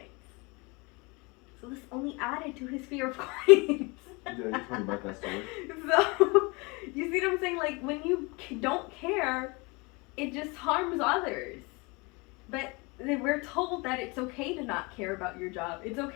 So this only added to his fear of coins. Yeah, you told me about that story. So, you see what I'm saying? Like, when you don't care, it just harms others. But we're told that it's okay to not care about your job. It's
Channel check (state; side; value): quieter; right; 27.6 dB